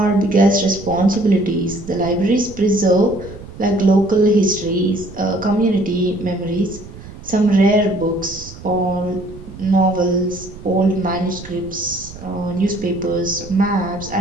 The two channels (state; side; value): noise; right; rumble, 15 dB below the sound